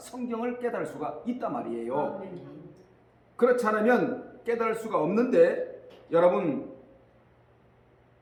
깨달을 수가 있단 말이에요. 그렇지 않으면 깨달을 수가 없는데, 여러분,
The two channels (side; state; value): both; identical; correlation 1.00